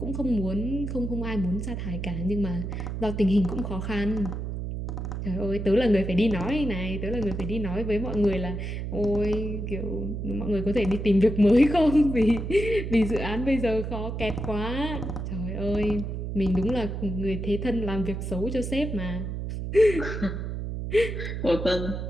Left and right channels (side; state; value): right; noise; hum, 4 dB below the sound